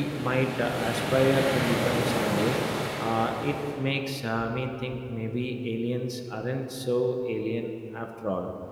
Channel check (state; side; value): identical; both; correlation 1.00